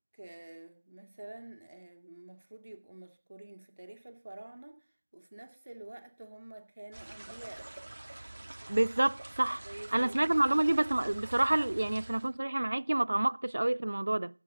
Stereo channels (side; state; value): both; inverted; correlation -1.00